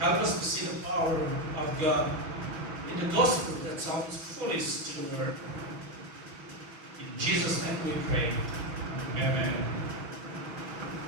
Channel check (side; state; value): left; late; 6.2 ms